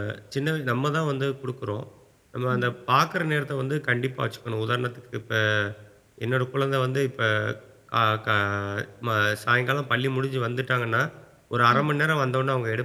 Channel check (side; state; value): both; identical; correlation 1.00